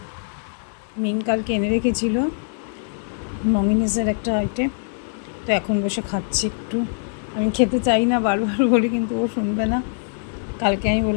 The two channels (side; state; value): right; silent; 64 dB below the other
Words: মিন কালকে এনে রেখেছিল মমিনিসের একটা আইটেম, তো এখন বসে খাচ্ছি একটু। আমি খেতে চাই না, বারবার বলি, কিন্তু ও শুনবে না। কালকে আমি